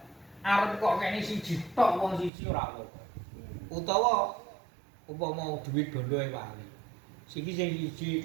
Arep kok kene siji tok wong siji ora apa. Utawa umpama duit bondo e wali. Sing siji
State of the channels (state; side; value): drops out; left; at 2.3 s